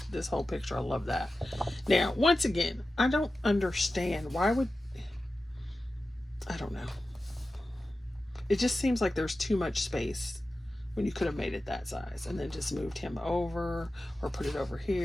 whole picture, I love that. Now, once again, I don't understand why would, I don't know. It just seems like there's too much space when you could have made it that size and then just moved him over or put it over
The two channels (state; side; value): normal; both; correlation 0.94